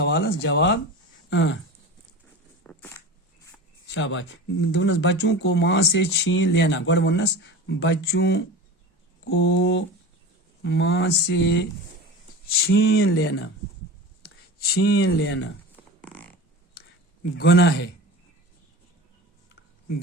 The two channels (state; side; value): normal; both; correlation 0.32